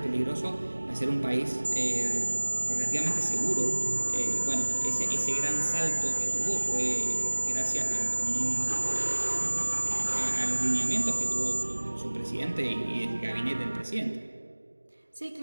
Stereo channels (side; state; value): both; inverted; correlation -1.00